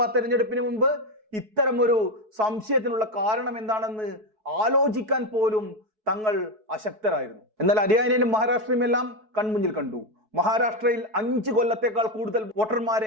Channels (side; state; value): left; late; 4.6 ms